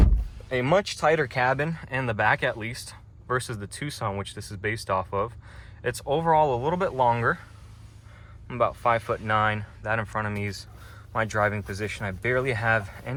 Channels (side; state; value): both; identical; correlation 1.00